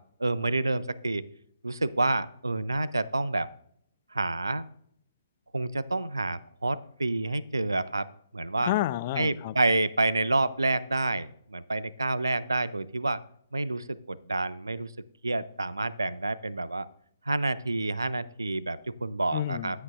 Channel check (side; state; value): both; inverted; correlation -0.87